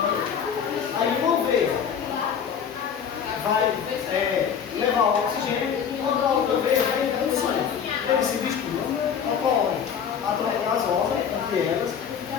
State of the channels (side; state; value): right; quieter; 7.6 dB